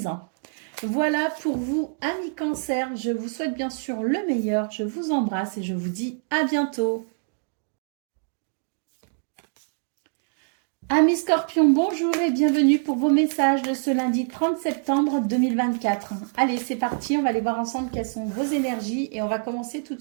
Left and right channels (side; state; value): left; silent; digital silence